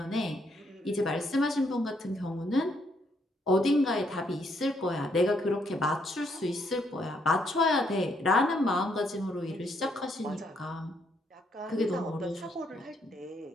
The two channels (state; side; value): normal; both; correlation 0.73